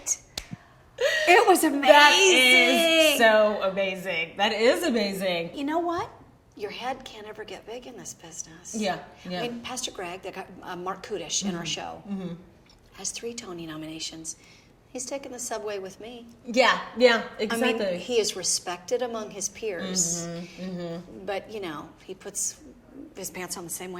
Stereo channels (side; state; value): both; identical; correlation 1.00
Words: It was amazing. That is so amazing. That is amazing. You know what? Your head can't ever get big in this business. Yeah. I mean, Pastor Greg, that got Mark Kudish in our show, has 3 Tony nominations. He's taken the subway with me. Yeah, exactly. I mean, he is respected among his peers. But, he puts his pants on the same